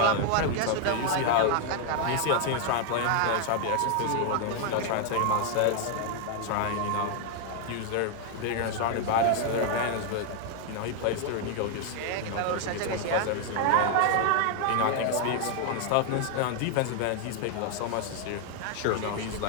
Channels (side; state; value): both; different; correlation 0.00